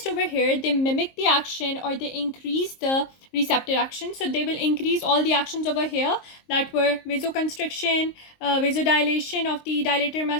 over here, they mimic the action or they increase the receptor action. So they will increase all the actions over here that were vasoconstriction, vasodilation of the dilator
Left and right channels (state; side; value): late; right; 23 ms